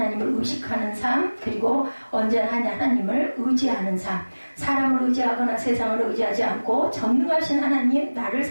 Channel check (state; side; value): inverted; both; correlation -1.00